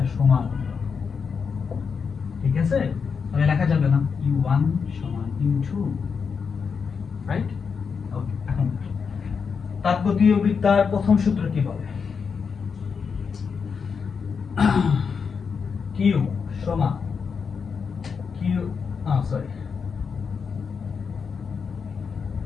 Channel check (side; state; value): right; quieter; 5.9 dB